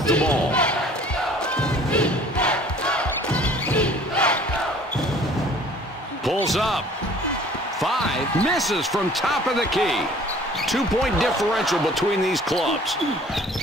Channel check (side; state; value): both; normal; correlation 0.51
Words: the ball. Pulls up. 5 misses from top of the key. 2-point differential between these clubs.